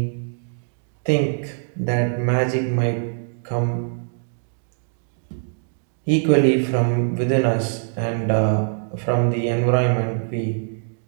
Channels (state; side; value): silent; left; digital silence